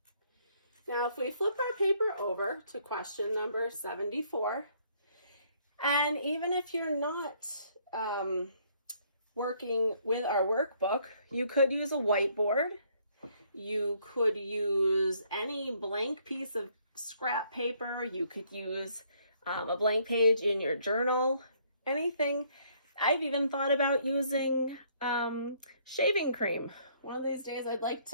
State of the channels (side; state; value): both; inverted; correlation -0.66